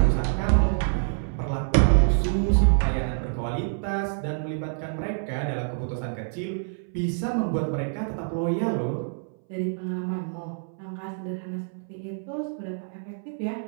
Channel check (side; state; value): left; silent; 60 dB below the other